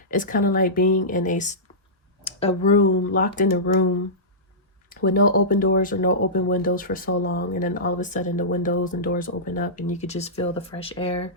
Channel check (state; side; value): normal; both; correlation -0.18